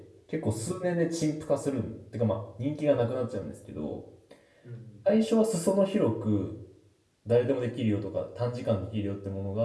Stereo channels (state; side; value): identical; both; correlation 1.00